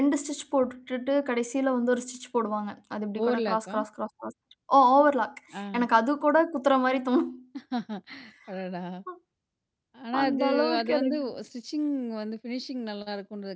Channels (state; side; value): identical; both; correlation 1.00